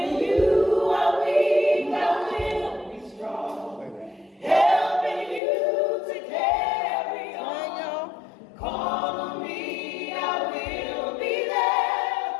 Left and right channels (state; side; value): drops out; right; at 5.4 s